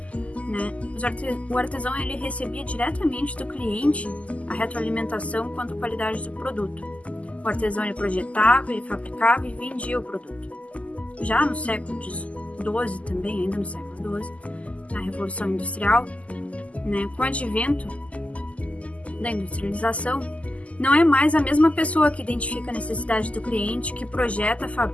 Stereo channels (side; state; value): right; late; 0.067 ms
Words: o artesão ele recebia diretamente do cliente a retroalimentação quanto à qualidade do produto. O artesão ele projetava, ele fabricava e vendia o produto. Já no século XII também, ainda no século XII, na Revolução Industrial, com o advento da industrialização, não é mais a mesma pessoa que identifica a necessidade do cliente, que projeta,